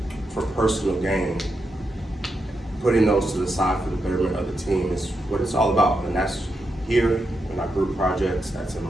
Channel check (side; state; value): both; normal; correlation 0.85